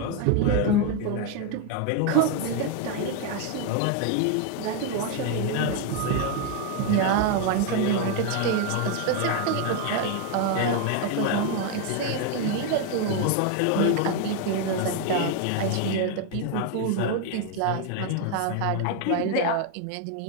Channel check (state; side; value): different; both; correlation 0.01